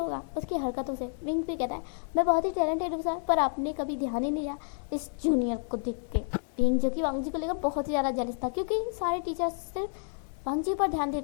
उसकी हरकतों से। विंग भी कहता है मैं बहुत ही टैलेंटेड हूँ सर, पर आपने कभी ध्यान ही नहीं दिया इस जूनियर को देख के। विंग जो कि वांगजी को लेकर बहुत ही ज़्यादा जेलस था क्योंकि सारे टीचर्स सिर्फ वांगजी पर ध्यान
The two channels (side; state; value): right; silent; 58 dB below the other